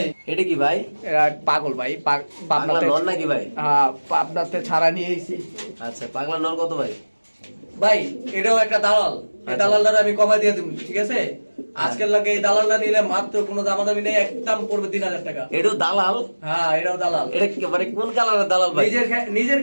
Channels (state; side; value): inverted; both; correlation -1.00